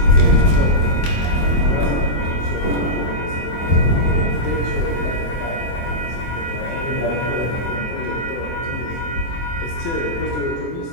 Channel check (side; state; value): right; late; 24 ms